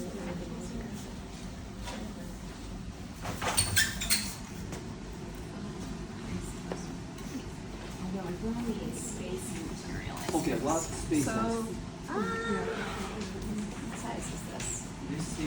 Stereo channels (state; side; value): identical; both; correlation 1.00